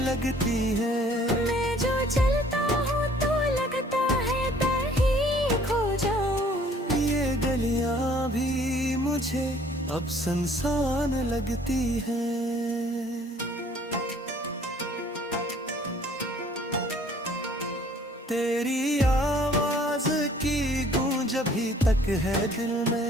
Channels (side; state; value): both; normal; correlation 0.57